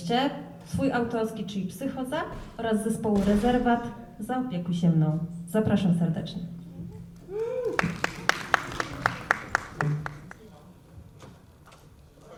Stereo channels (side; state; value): both; identical; correlation 1.00